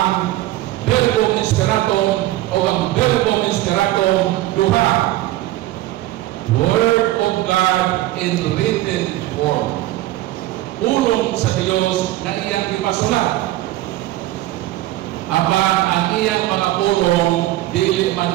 Verbum Inspiratum, o ang Verbum Inspiratum duha, Word of God in written form. Pulong sa Dios na iyang ipasulat. Apan ang iyang mga pulong dili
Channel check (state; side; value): quieter; left; 15.9 dB